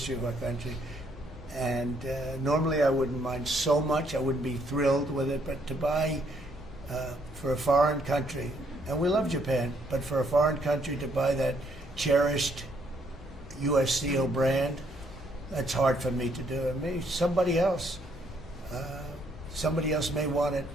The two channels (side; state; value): both; normal; correlation 0.70